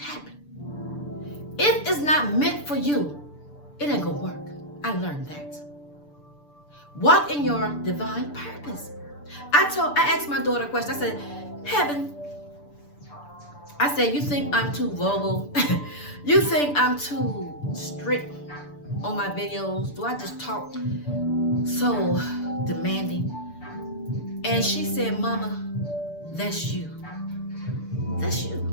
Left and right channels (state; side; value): late; right; 6.9 ms